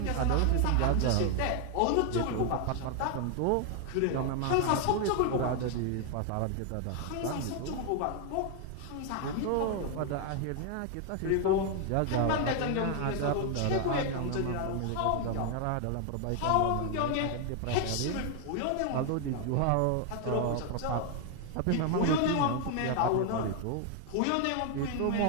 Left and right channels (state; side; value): different; both; correlation 0.00